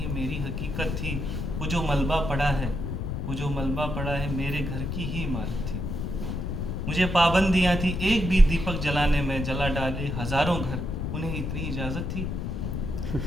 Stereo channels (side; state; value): left; noise; rumble, 3 dB below the sound